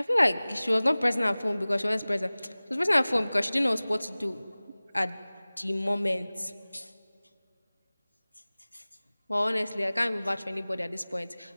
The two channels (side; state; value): both; inverted; correlation -0.99